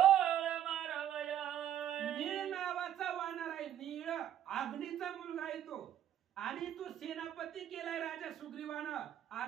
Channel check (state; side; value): quieter; left; 10.9 dB